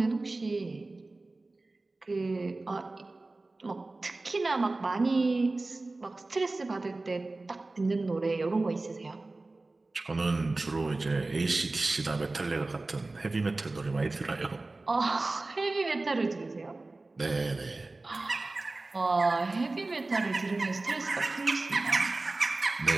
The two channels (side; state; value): left; quieter; 3.2 dB